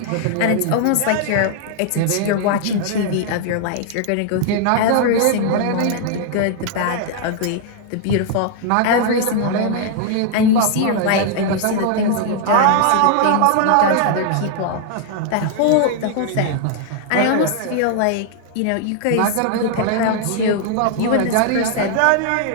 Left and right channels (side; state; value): both; different; correlation 0.00